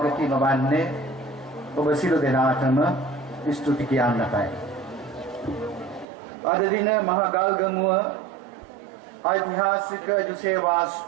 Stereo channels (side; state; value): left; drops out; at 6.1 s